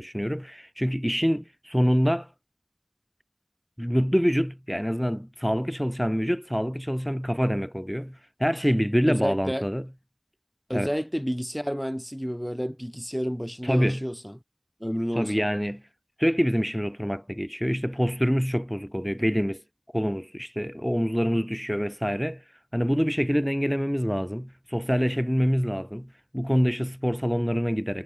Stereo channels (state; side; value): identical; both; correlation 1.00